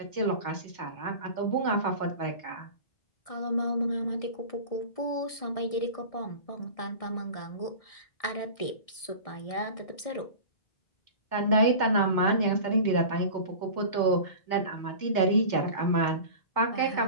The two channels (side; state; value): right; late; 1.6 ms